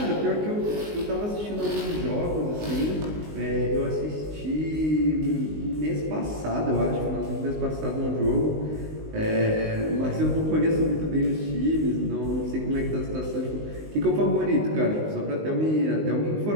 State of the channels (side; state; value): left; late; 19 ms